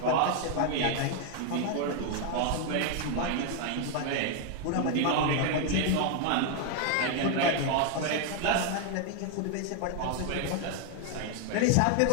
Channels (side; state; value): both; different; correlation 0.00